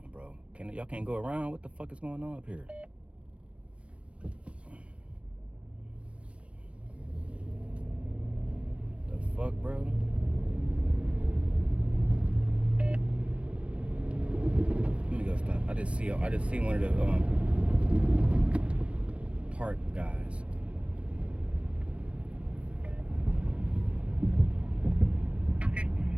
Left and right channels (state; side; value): late; left; 0.061 ms